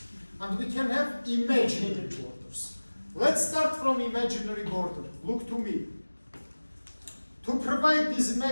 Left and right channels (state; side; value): inverted; both; correlation -1.00